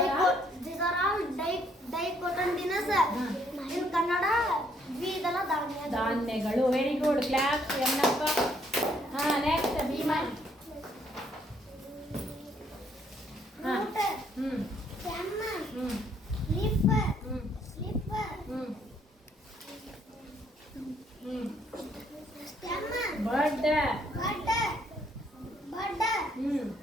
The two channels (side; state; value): both; normal; correlation 0.68